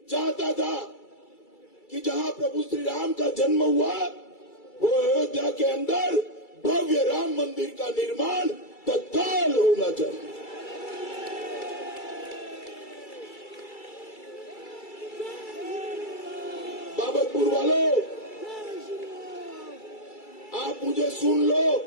चाहता था कि जहां प्रभु श्री राम का जन्म हुआ, वो अयोध्या के अंदर भव्य राम मंदिर का निर्माण तत्काल होना चाहिए। बाबतपुर वालों, आप मुझे सुन लो।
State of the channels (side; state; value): right; late; 2.3 ms